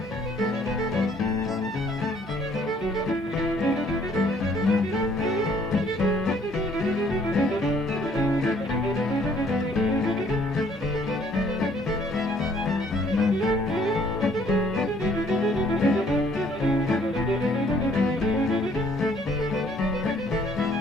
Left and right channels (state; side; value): normal; both; correlation 0.61